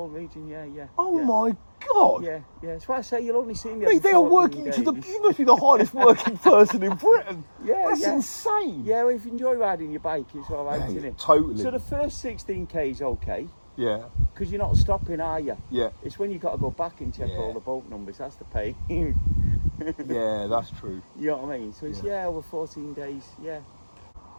region, yeah. Oh my God. Yeah. That's why I say you'll only see me. Mate, they are working days. you must be the hardest working person in Britain. That's yeah. insane. Yeah, well, if you enjoy riding your bike, it's all right, isn't it? Totally. So the first 16k is okay. Yeah. Because you're not stopping, are you? Yeah. It's when you've got to go back and check all the boat numbers. That's the pain. Yeah, that's true. You know what I mean? So it's over 14 days. Yeah.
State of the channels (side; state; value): both; inverted; correlation -1.00